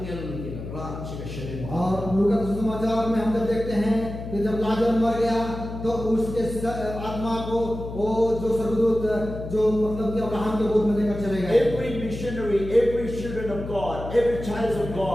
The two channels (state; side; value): noise; left; hum, 9 dB below the sound